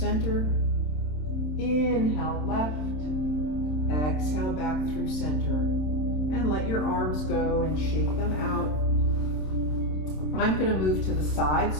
Inhale, left. Exhale, back through center. And let your arms go and shake them out. I'm going to move to the side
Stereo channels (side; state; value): right; late; 27 ms